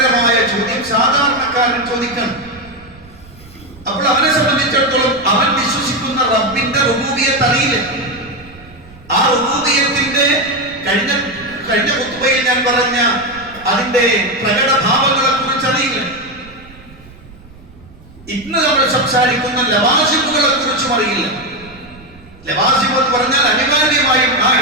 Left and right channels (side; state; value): right; noise; rumble, 22 dB below the sound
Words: ചോദ്യം സാധാരണക്കാരൻ ചോദിക്കണം. അപ്പോൾ അവനെ സംബന്ധിച്ചിടത്തോളം അവൻ വിശ്വസിക്കുന്ന റബ്ബിന്റെ റുബൂബിയത്ത് അറിയില്ല. ആ റുബൂബിയത്തിന്റെ കഴിഞ്ഞ ഖുത്ബയിൽ ഞാൻ പറഞ്ഞ അതിന്റെ പ്രകടഭാവങ്ങളെ കുറിച്ച് അറിയില്ല. ഇന്ന് നമ്മൾ സംസാരിക്കുന്ന ലവാസിമുകളെ കുറിച്ചും അറിയില്ല. ലവാസിം എന്ന് പറഞ്ഞാൽ അനിവാര്യമായും ആ